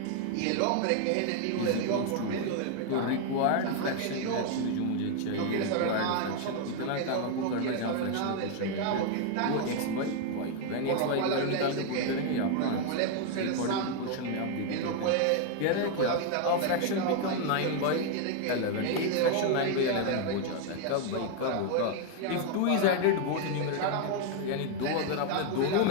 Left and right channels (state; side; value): different; both; correlation 0.01